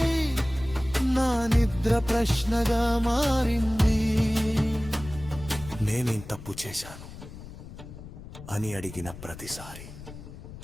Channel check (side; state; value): left; noise; rumble, 14 dB below the sound